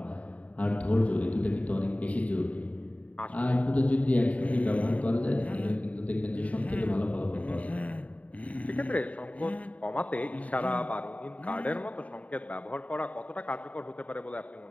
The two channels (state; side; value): late; right; 0.069 ms